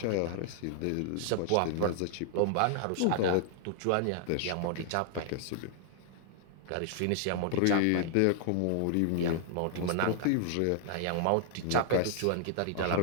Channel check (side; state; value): both; different; correlation -0.01